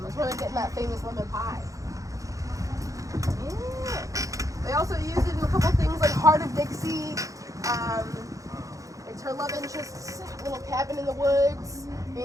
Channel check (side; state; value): left; late; 0.16 ms